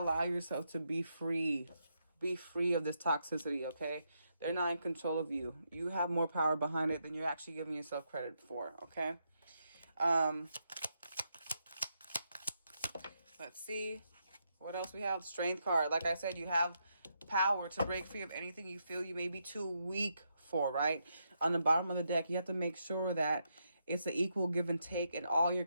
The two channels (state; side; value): inverted; both; correlation -0.81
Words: yourself to be free of this toxicity. Okay, they're not in control of you. You have more power behind it than you're actually giving yourself credit for. Okay. um Let's see what else we have. Strength card. Like I said, you have power to break free of anything you feel you may be too weak for, right? On the bottom of the deck, you have to make sure that it's an equal give and take in all your